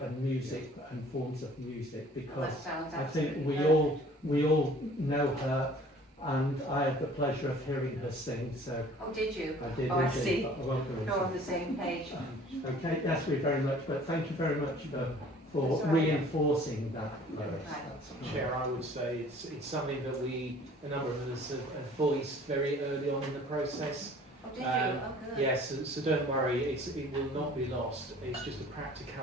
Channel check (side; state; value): both; normal; correlation 0.51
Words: and music and forms of music, Well, because that sounds I think absolutely we all know her, and I had the pleasure of hearing her sing, so Oh, did you? I did. Oh, I indeed. see. I welcome You're on it. the same page. Okay, that's me very much, but thank you very much for That's all right. reinforcing that, Lois. Right. That's- Chair, I would say it's something that a number of us have voiced very early on in the process. Oh, did you? Um, Oh, good. Yes, so don't worry, it will not be lost. It's just the